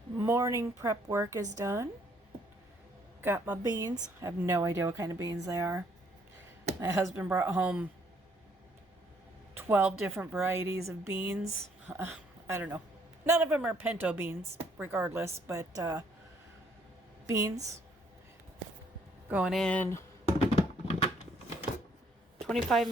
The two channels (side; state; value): both; normal; correlation 0.66